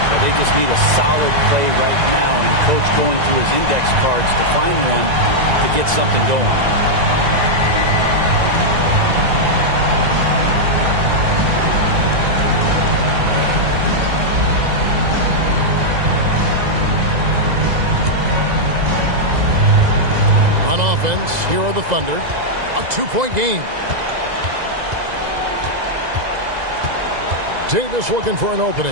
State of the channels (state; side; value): late; left; 2.0 ms